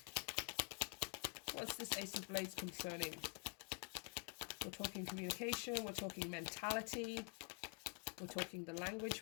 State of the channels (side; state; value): right; quieter; 39.7 dB